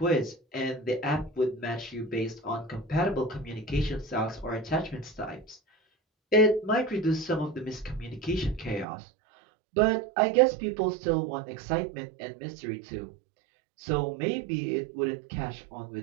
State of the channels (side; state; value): left; drops out; at 8.8 s